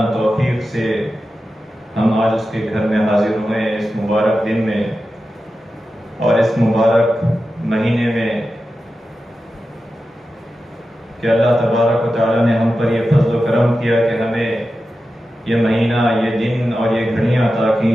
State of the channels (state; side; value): normal; both; correlation 0.92